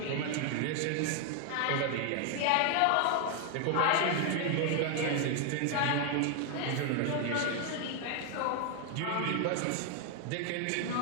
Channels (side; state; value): both; different; correlation 0.00